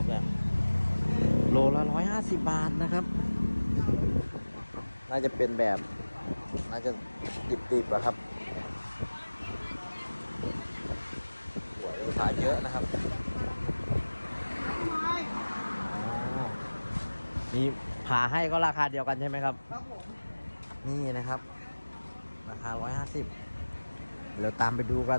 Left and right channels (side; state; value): both; inverted; correlation -1.00